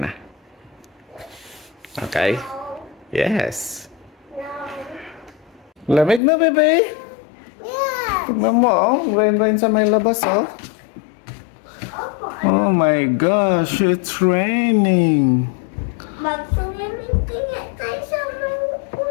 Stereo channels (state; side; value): drops out; right; at 6.2 s